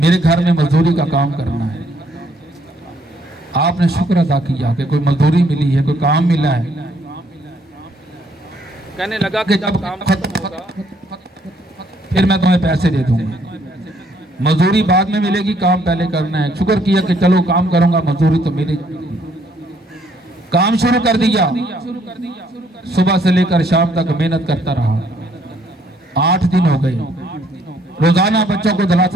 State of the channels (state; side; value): normal; both; correlation 0.67